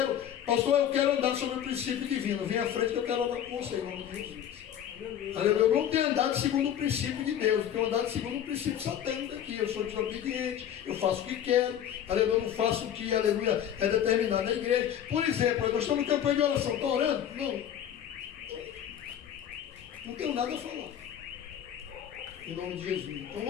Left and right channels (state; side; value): quieter; right; 9.9 dB